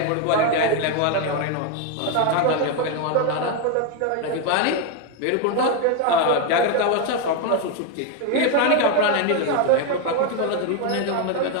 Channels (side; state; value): both; different; correlation 0.01